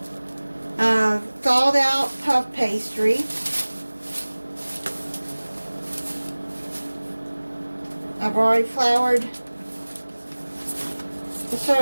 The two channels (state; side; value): inverted; both; correlation -1.00